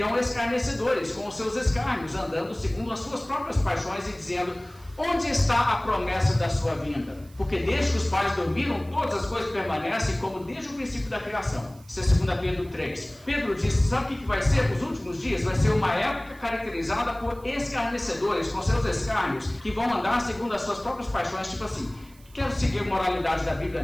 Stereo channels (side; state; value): right; noise; hiss, 27 dB below the sound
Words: escarnecedores com os seus escárnios, andando segundo as suas próprias paixões e dizendo, onde está a promessa da sua vinda? Porque desde que os pais dormiram, todas as coisas permanecem como desde o princípio da criação. Isso é 2 Pedro 3. Pedro disse, sabe o que vai ser? Os últimos dias vai ser uma época caracterizada por escarnecedores, com seus escárnios, que vão andar segundo as suas próprias paixões, tipo assim, quero seguir a moralidade da Bíblia,